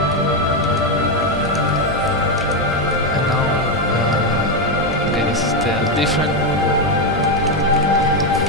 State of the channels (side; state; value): both; normal; correlation 0.07